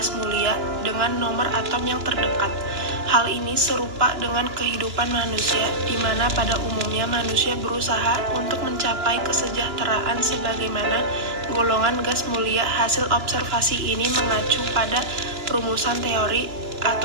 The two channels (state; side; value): late; left; 2.9 ms